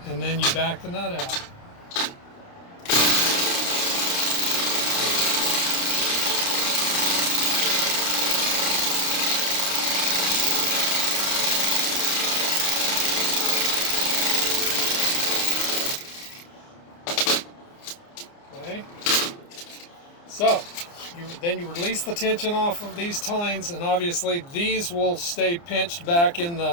And then you back the nut out. Okay. So, then you release the tension off of these tines, and obviously these will stay pinched back in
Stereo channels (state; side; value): late; right; 29 ms